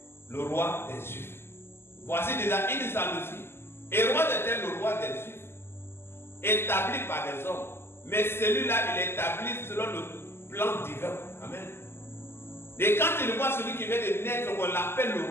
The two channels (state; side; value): late; right; 0.12 ms